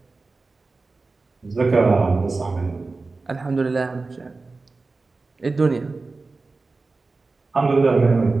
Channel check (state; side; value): quieter; left; 3.7 dB